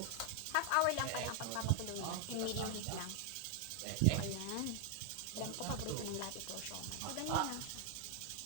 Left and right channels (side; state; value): both; different; correlation 0.00